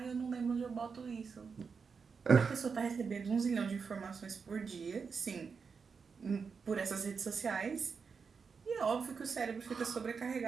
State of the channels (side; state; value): left; quieter; 5.5 dB